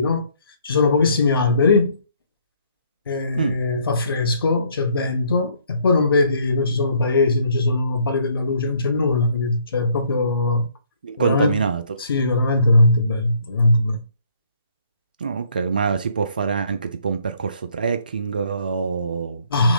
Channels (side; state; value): both; inverted; correlation -0.65